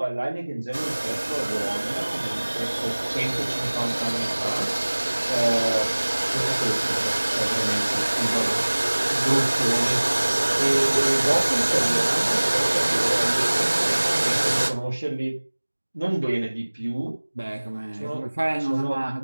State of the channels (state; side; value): inverted; both; correlation -1.00